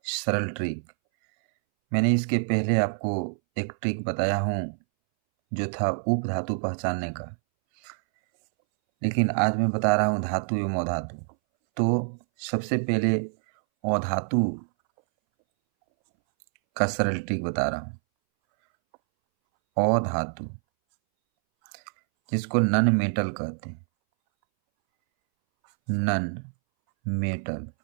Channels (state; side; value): silent; left; 61 dB below the other